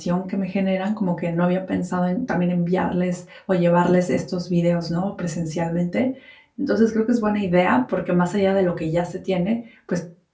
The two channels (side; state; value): both; identical; correlation 1.00